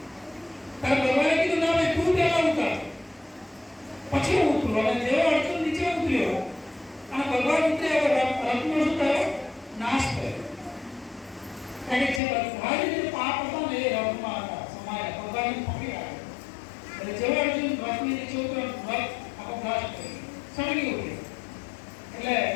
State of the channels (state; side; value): drops out; right; at 12.2 s